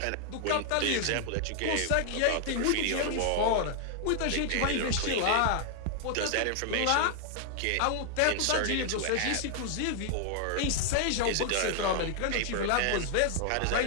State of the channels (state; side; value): different; both; correlation 0.00